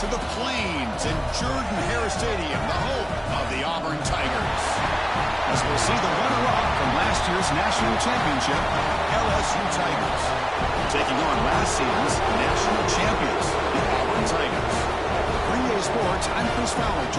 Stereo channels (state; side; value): identical; both; correlation 1.00